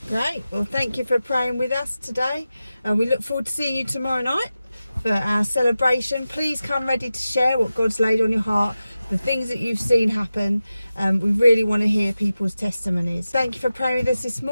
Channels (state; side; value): inverted; both; correlation -0.93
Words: Great. Well, thank you for praying with us today. We look forward to seeing you tomorrow night for our celebration. Please come ready to share what God's laid on your heart, the things that you've seen happen. We really want to hear people's testimonies. Thank you for praying with us this